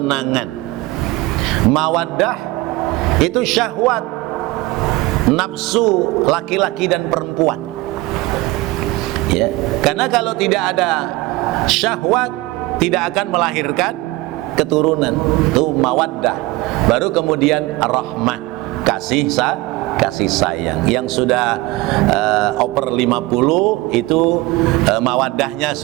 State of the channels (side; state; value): left; quieter; 20.3 dB